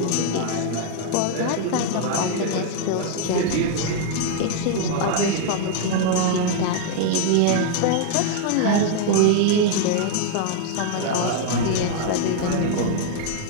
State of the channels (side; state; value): both; different; correlation 0.00